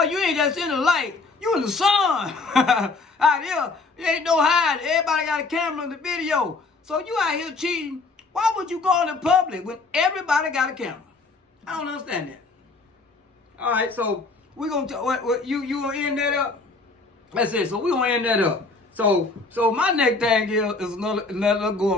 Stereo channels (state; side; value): quieter; right; 3.9 dB